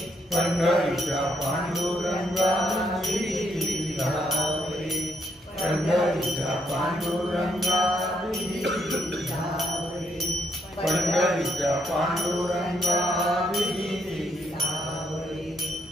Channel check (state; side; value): normal; both; correlation 0.74